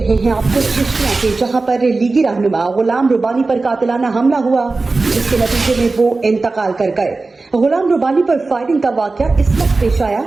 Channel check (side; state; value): left; quieter; 3.6 dB